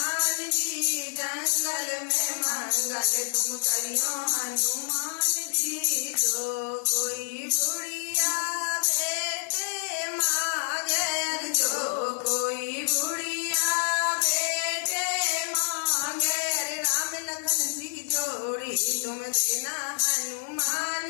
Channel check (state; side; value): silent; right; 60 dB below the other